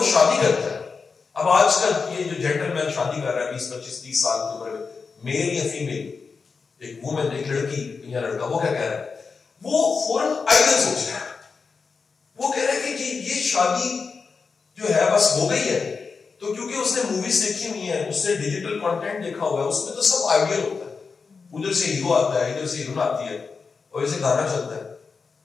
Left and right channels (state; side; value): quieter; right; 5.0 dB